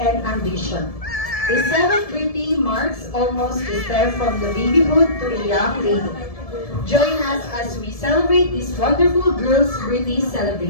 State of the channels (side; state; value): right; late; 1.7 ms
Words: and ambition. A seventh birthday marks almost a step from the babyhood to a young lady. Join us as we celebrate this wonderful girl's birthday